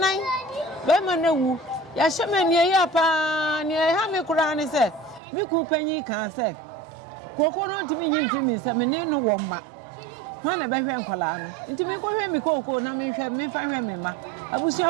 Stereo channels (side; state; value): left; drops out; at 5.2 s